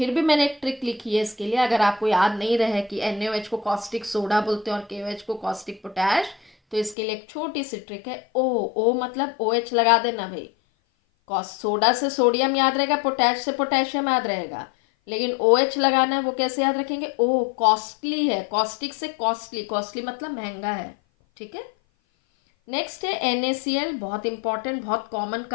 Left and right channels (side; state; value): right; drops out; at 7.0 s